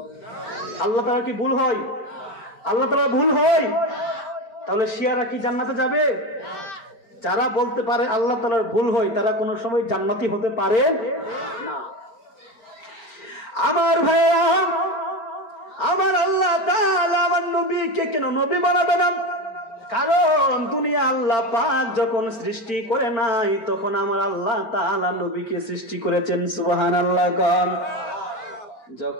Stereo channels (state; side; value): late; right; 4.5 ms